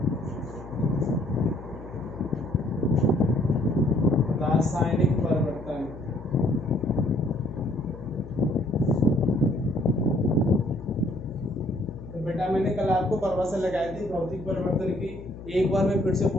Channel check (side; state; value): left; noise; hum, 14 dB below the sound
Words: रासायनिक परिवर्तन तो बेटा मैंने कल आपको परिभाषा लगाई थी भौतिक परिवर्तन की। एक बार मैं फिर से